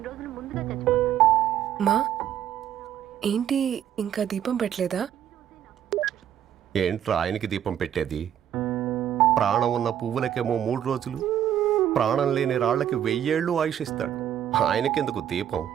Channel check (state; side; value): quieter; left; 10.3 dB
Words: రోజులు ముందుగా చచ్చిపోతాను. మా ఏంటి ఇంకా దీపం పెట్టలేదా? ఏంట్రా ఆయనకి దీపం పెట్టేది? ప్రాణం ఉన్న పువ్వులకేమో 3 రోజులు, ప్రాణం లేని రాళ్లకి 1000 ఏళ్ళు ఆయుషిస్తాడు. ఆయనకెందుకు దీపం?